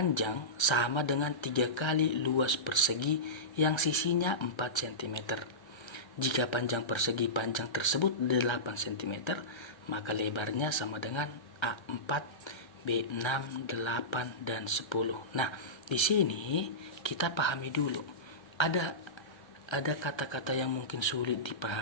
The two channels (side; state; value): right; late; 1.3 ms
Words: sama dengan 3 kali luas persegi yang sisinya 4 cm. Jika panjang persegi panjang tersebut 8 cm, maka lebarnya sama dengan A4, B6, 8, dan 10. Nah, di sini kita pahami dulu. Ada kata-kata yang mungkin sulit